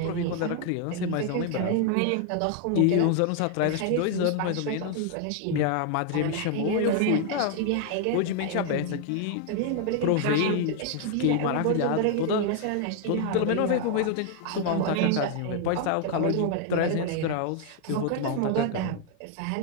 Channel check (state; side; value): different; both; correlation 0.00